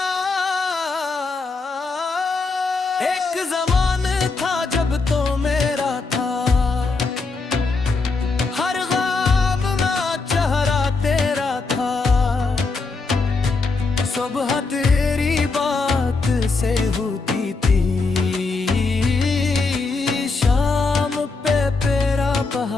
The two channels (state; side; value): quieter; right; 4.0 dB